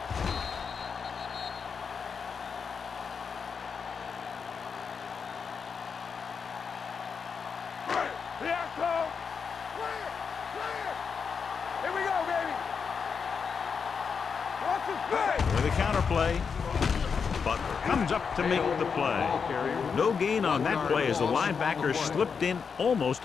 With a counter play, Butler comes up to make the play. No gain on that play as the linebacker slipped in almost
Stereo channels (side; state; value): right; quieter; 6.0 dB